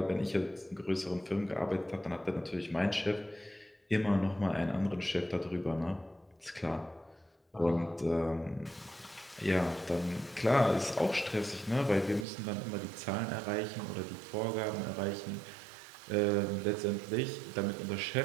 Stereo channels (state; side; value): drops out; left; at 12.2 s